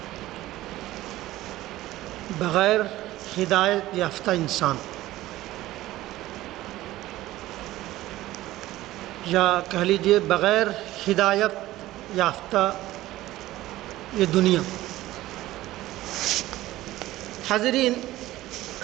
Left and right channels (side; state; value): left; quieter; 16.1 dB